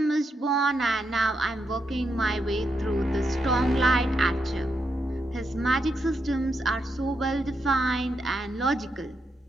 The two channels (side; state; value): both; normal; correlation 0.82